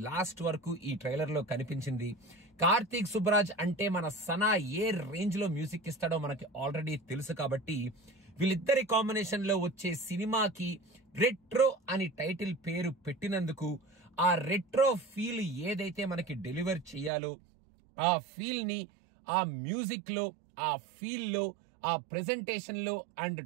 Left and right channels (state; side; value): drops out; left; at 17.1 s